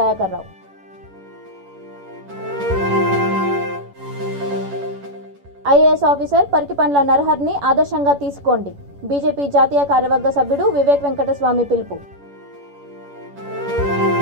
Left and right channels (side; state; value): left; late; 11 ms